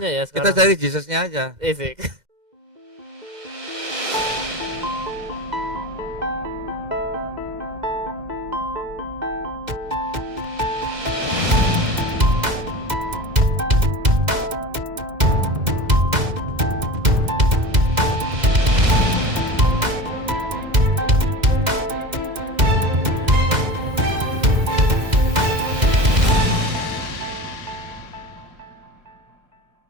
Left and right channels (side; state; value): left; late; 2.0 ms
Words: Yesusnya ya kita sekarang. cari Jesusnya aja. Sik.